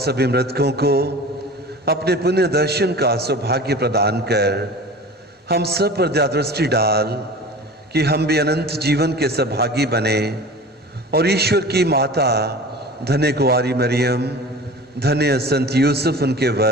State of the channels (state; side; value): normal; both; correlation 0.38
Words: मृतकों को अपने पुण्य दर्शन का सौभाग्य प्रदान कर हम सब पर दया दृष्टि डाल कि हम भी अनंत जीवन के सौभागी बने और ईश्वर की माता धन्य कुंवारी मरियम, धन्य संत यूसुफ उनके